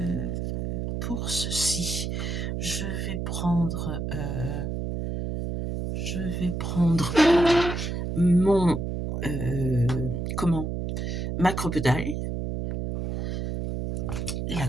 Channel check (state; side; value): noise; right; hum, 3 dB below the sound